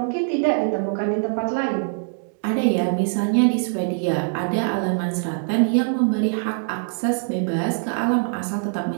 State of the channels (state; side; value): silent; left; digital silence